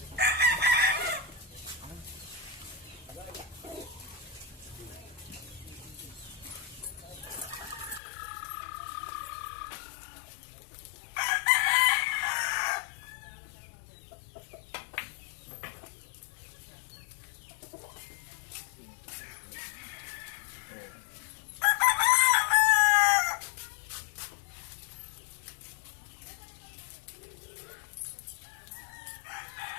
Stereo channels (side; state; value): right; drops out; at 8.0 s